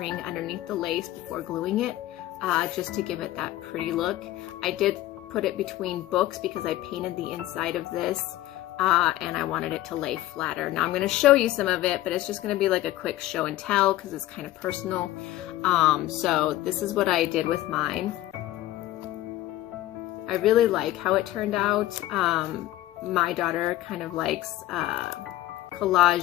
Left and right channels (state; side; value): quieter; right; 15.4 dB